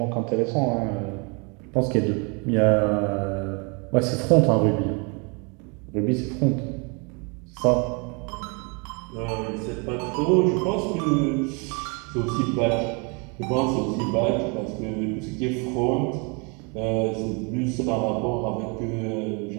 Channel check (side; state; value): left; quieter; 32.5 dB